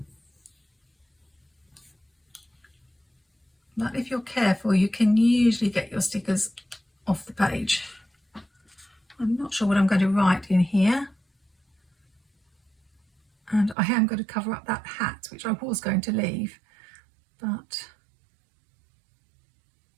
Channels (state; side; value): drops out; left; at 13.8 s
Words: But if you're careful, you can usually get your stickers off the page. I'm not sure what I'm going to write in here. And I am going to cover up that hat, which I was going to leave, but